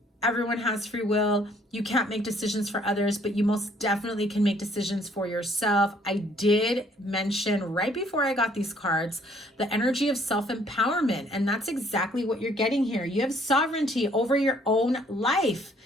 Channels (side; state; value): both; normal; correlation 0.62